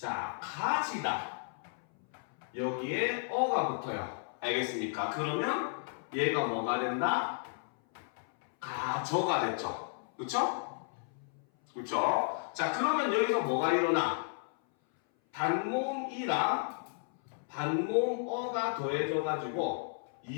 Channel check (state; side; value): silent; right; 55 dB below the other